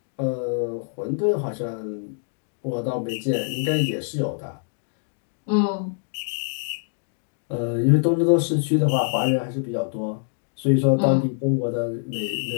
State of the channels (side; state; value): right; silent; 62 dB below the other